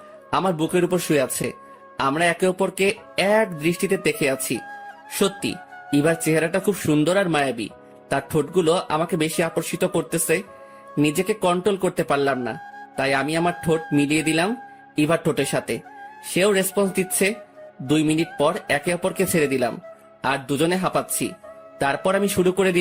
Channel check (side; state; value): both; identical; correlation 1.00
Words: আমার বুকের উপর শুয়ে আছে। আমরা একে অপরকে এক দৃষ্টিতে দেখে আছি। সত্যি ইভার চেহারাটা খুব সুন্দর আর মায়াবী। তার ঠোঁটগুলো আমাকে বেশি আকর্ষিত করতেছে। নিজেকে কন্ট্রোল করতে পারলাম না, তাই আমি আমার ঠোঁট মিলিয়ে দিলাম ইভার ঠোঁটের সাথে। সেও রেসপন্স দিচ্ছে। 2 মিনিট পর একে অপরকে ছেড়ে দিলাম, আর দুজনে হাঁপাচ্ছি। তারপর আমি শুরু করে